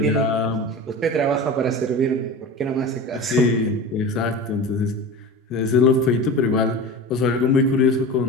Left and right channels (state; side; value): normal; both; correlation 0.30